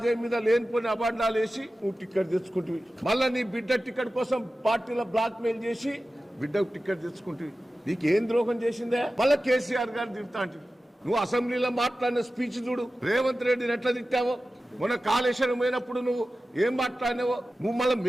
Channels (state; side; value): normal; both; correlation 0.94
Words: మీద లేనిపోయిన అబాండాలు వేసి నువ్వు టికెట్ తెచ్చుకుంటుంది. మళ్ళా నీ బిడ్డ టికెట్ కోసం పార్టీలో బ్లాక్ మెయిల్ చేసి బిడ్డకు టికెట్ తెచ్చుకుంటుంది. నీకేం ద్రోహం చేసిందే? మళ్ళా కేసీఆర్ గారు తిడతా అంటుంది. నువ్వు అసెంబ్లీలో మాట్లాడిన స్పీచ్ చూడు, రేవంత్ రెడ్డిని ఎట్లా తిట్టావో. మొన్న కాళేశ్వరం పోయినప్పుడు నువ్వు ఏం మాట్లాడినావో. నువ్వు మళ్ళీ